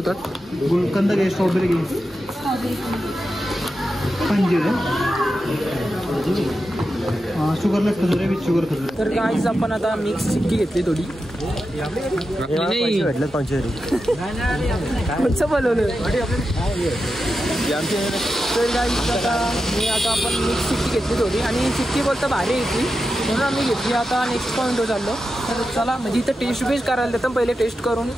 गुलकंद घे स्ट्रॉबेरी घे शुगरलेस खजुरे विथ शुगर खजुरे. तर गाईज आपण आता मिक्स चिक्की घेतली थोडी नाही कोणचं बोलवलं तर गाईज आता आपण मिक्स चिक्की घेतली थोडी आणि चिक्की बोलता भारी येते म्हणून आम्ही घेतली. आता नेक्स्ट पॉईंटवर चाललो. तर चला म्हणजे इथं टेस्ट बेस्ट करायला देतात पहिले टेस्ट करून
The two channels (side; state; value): both; normal; correlation 0.90